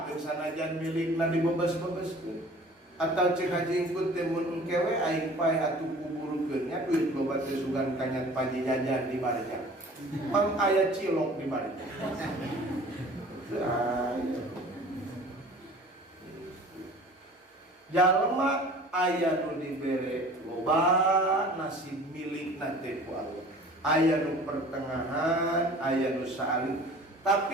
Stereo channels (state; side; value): normal; both; correlation 0.46